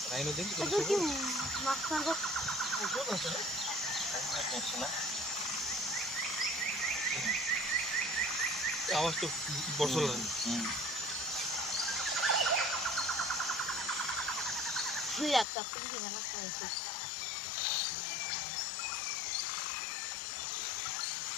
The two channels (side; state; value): right; drops out; at 15.5 s